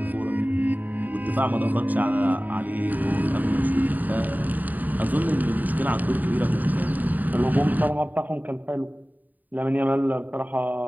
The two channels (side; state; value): left; late; 0.084 ms